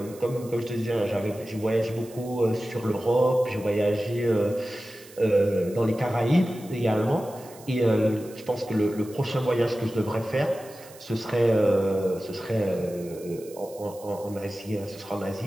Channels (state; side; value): noise; right; hiss, 21 dB below the sound